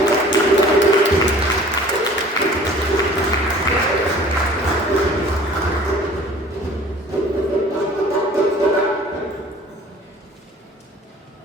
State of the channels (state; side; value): normal; both; correlation 0.49